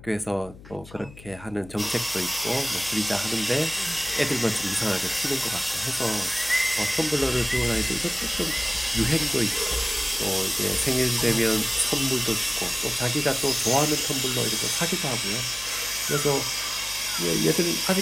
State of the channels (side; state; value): left; noise; hum, 19 dB below the sound